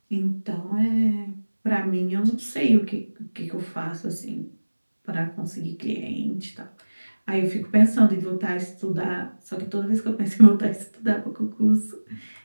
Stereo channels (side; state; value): both; inverted; correlation -1.00